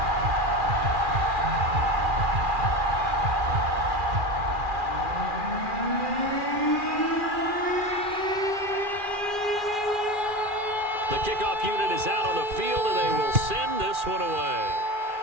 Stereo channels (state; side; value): late; left; 2.4 ms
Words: The kickoff unit is out on the field, and they will send this one away.